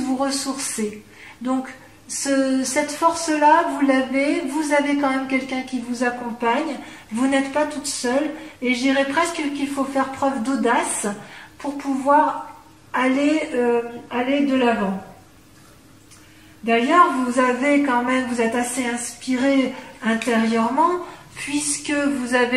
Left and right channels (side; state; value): both; identical; correlation 1.00